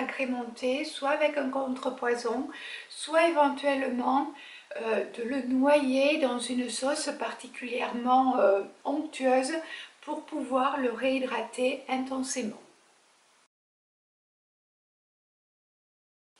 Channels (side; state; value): both; identical; correlation 1.00